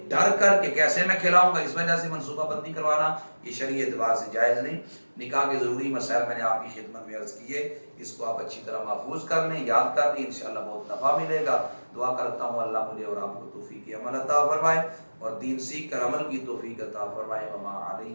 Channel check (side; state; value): both; inverted; correlation -1.00